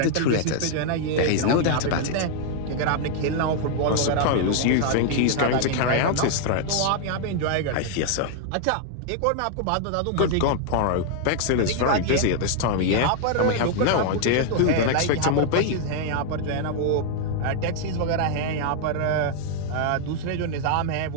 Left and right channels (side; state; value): both; different; correlation 0.00